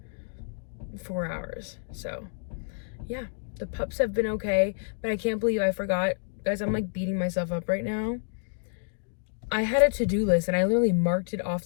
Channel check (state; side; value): silent; right; digital silence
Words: 4 hours. So yeah, the pups have been okay, but I can't believe I forgot, guys. I'm like beating myself up right now. I had a to-do list and I literally marked it